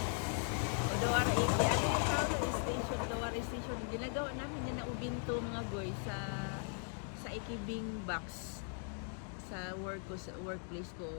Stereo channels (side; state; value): right; silent; 52 dB below the other